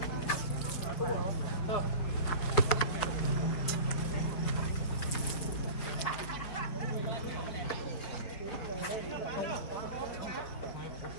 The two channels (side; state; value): right; late; 5.1 ms